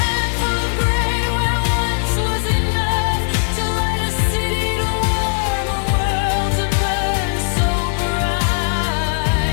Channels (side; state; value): right; silent; digital silence